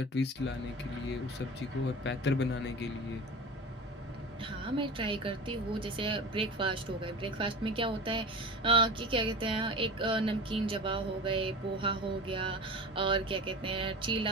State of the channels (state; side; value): normal; both; correlation 0.32